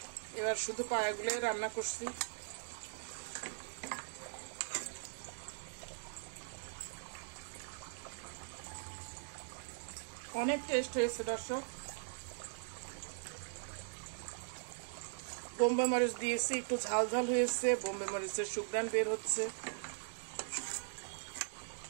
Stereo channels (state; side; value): silent; left; digital silence